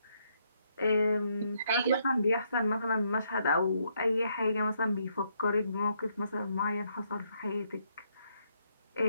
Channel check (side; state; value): both; inverted; correlation -0.75